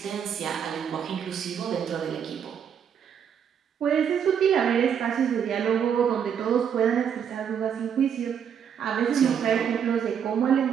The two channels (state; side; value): quieter; left; 8.0 dB